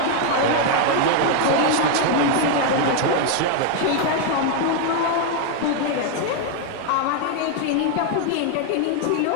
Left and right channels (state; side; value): different; both; correlation 0.01